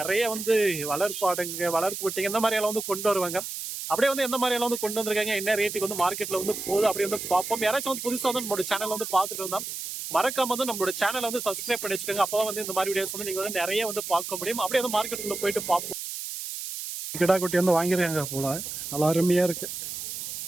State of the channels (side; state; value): right; noise; hiss, 7 dB below the sound